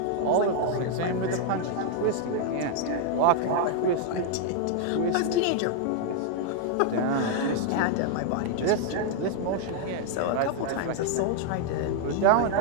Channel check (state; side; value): different; both; correlation 0.00